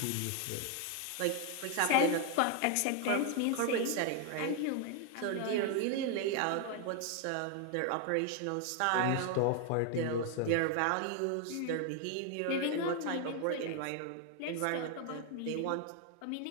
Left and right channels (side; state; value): both; different; correlation 0.01